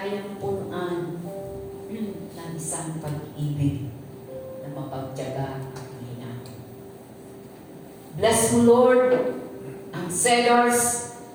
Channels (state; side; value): identical; both; correlation 1.00